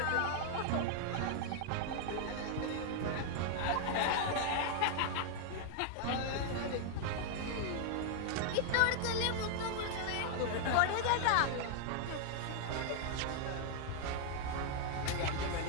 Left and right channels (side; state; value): both; different; correlation 0.00